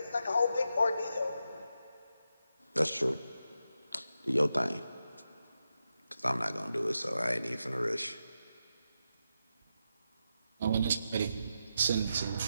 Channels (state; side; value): inverted; both; correlation -0.87